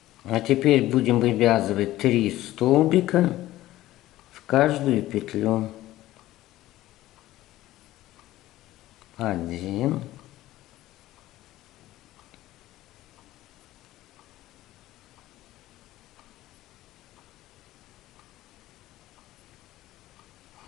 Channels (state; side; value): quieter; right; 15.6 dB